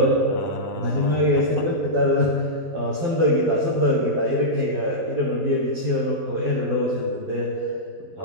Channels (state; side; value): late; left; 12 ms